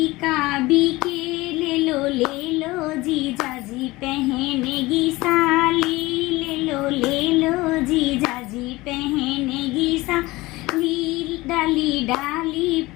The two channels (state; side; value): quieter; right; 20.5 dB